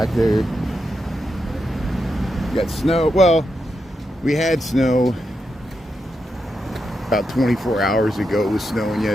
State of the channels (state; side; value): normal; both; correlation 0.85